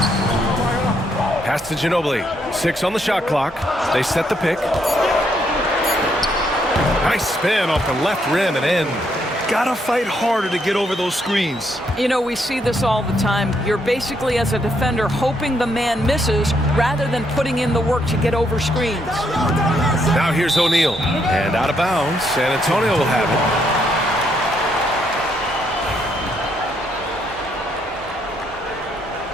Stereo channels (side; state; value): both; normal; correlation 0.74